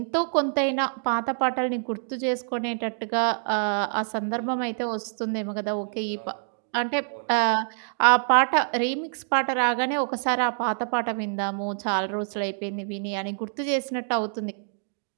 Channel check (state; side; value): silent; left; digital silence